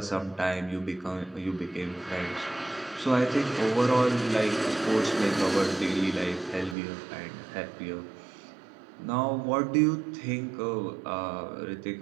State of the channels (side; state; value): left; drops out; at 6.8 s